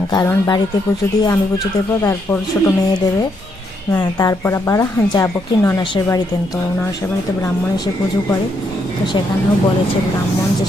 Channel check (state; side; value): normal; both; correlation 0.76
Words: কারণ বাড়িতে পুজো দিয়ে আমি পুজো দেবো, তারপর ছোটো মেয়ে দেবে, তারপর আবার যাবো কি ননাসের বাড়িতে। তো ননাসের বাড়িতে ব্রাহ্মণ এসে পুজো করে, তো সেখানেও বলেছে ব্রাহ্মণ যে